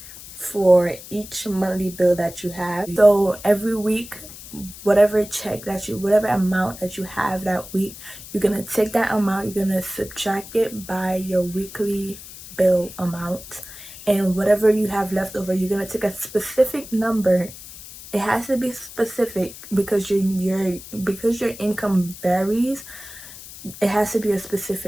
for each monthly bill that you have. So every week, whatever amount that you have that week, you're gonna take that amount, you're gonna subtract it by your weekly bill amount, and whatever you have left over, you're gonna take a specific number. It has to be specific because your income varies. It has to be a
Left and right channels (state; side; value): noise; left; hiss, 15 dB below the sound